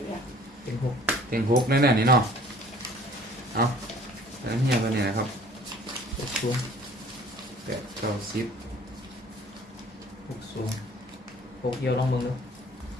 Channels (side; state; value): both; normal; correlation 0.52